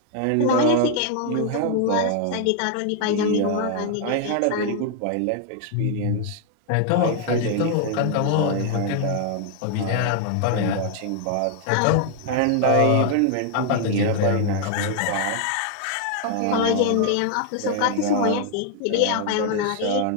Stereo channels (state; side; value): different; both; correlation 0.00